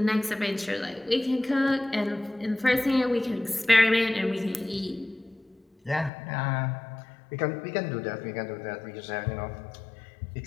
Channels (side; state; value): right; drops out; at 6.1 s